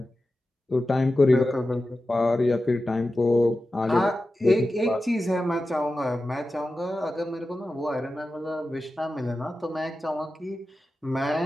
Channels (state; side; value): normal; both; correlation 0.93